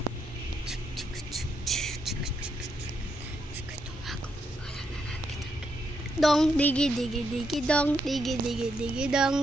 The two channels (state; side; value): normal; both; correlation 0.80